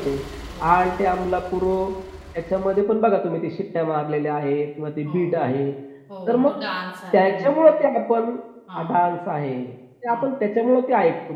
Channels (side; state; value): both; identical; correlation 1.00